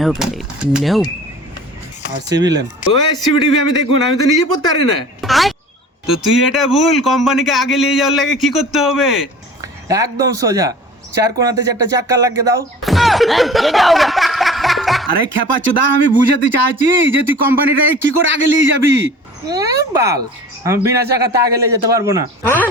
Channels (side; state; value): both; normal; correlation 0.42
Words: No. আর সিভিলেন ওই CBTV আমি দেখুন, আমি তো নিজে পড়তে পারি না। তো তুই এটা ভুল, কোম্পানিকে আগে নিয়ে যাওয়ার লাগে কি করতে হবে? একদম সোজা, চার কোণাতে চারটা চাক্কা লাগিয়ে দাও। আরে খেপা চোদা, আমি বুঝাতে চাইছি যে তুই কোম্পানিটাকে কি করে আগে নিয়ে যাবি। বাল, আমি বিনা চাকাতে আগে নিয়ে যেতে পারবো না।